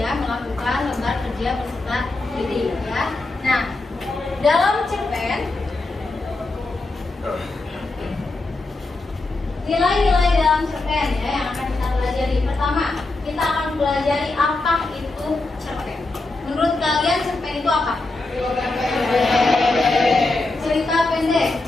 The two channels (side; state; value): right; quieter; 3.1 dB